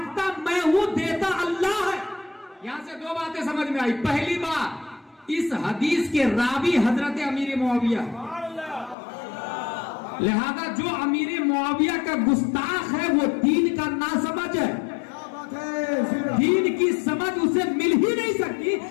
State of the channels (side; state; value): right; drops out; at 9.0 s